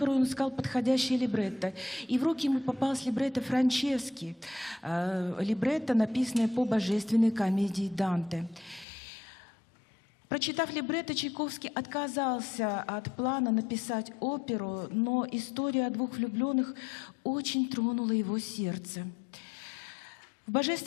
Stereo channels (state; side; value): drops out; right; at 8.8 s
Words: он искал подходящее либретто. И в руки ему попалось либретто Франчески, либретто, написанное по божественной комедии Данте. Прочитав либретто, Чайковский отказался от плана написать оперу, но история о двух влюбленных очень тронула его сердце. В